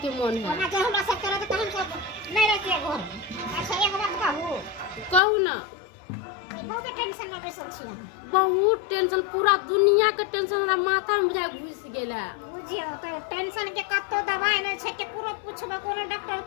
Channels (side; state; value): right; drops out; at 5.2 s